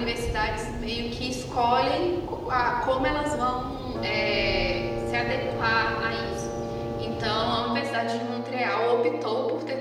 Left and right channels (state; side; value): identical; both; correlation 1.00